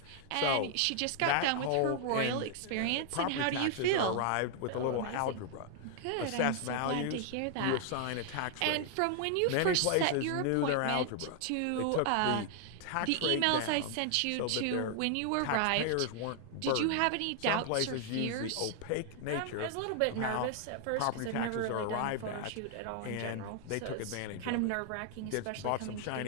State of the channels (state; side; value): different; both; correlation 0.00